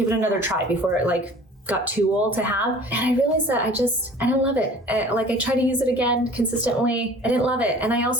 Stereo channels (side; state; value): both; normal; correlation 0.46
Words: it another try before it got too old to have. And I realized that I don't love it. I tried to use it again consistently. I didn't love it. And I